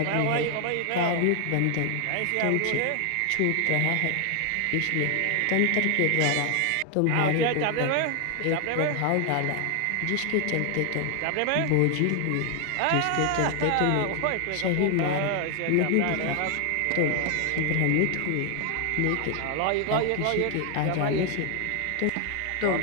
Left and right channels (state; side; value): different; both; correlation 0.00